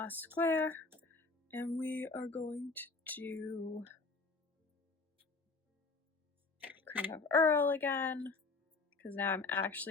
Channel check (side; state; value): right; quieter; 4.0 dB